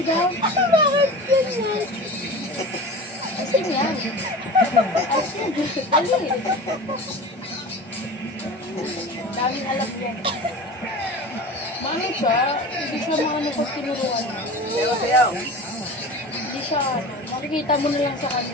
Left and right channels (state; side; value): normal; both; correlation 0.34